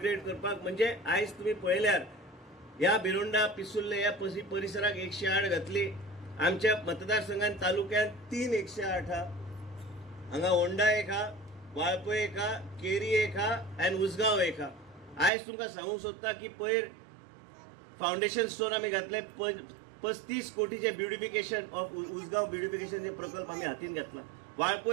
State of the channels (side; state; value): left; drops out; at 15.3 s